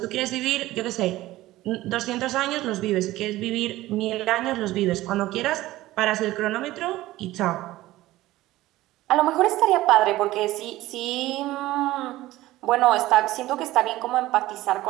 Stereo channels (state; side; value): quieter; left; 16.8 dB